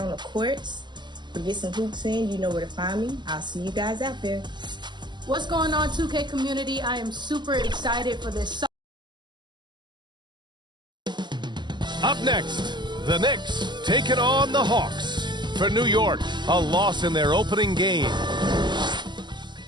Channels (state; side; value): late; left; 0.22 ms